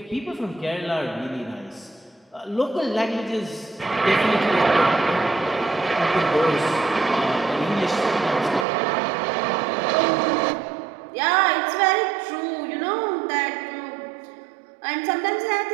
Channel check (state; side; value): drops out; left; at 8.7 s